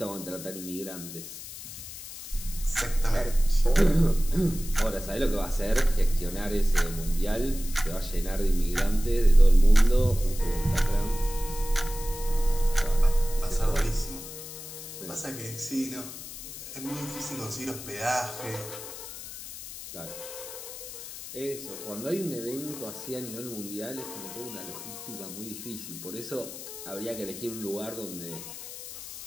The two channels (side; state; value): left; noise; hiss, 12 dB below the sound